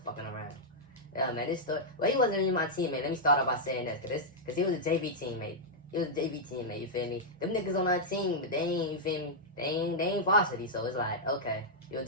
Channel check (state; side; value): normal; both; correlation -0.07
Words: fucking around. Yeah, man, this story. Well, he wasn't even my teammate. Let me start off by saying this, cause he was a JV teammate. He was a JV teammate, you feel me? Them niggas on our team, but they ain't, you feel me? They ain't varsity, so it's like, okay, you a